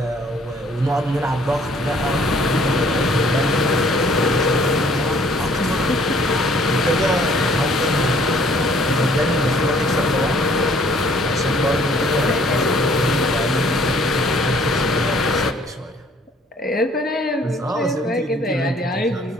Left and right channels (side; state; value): both; normal; correlation 0.59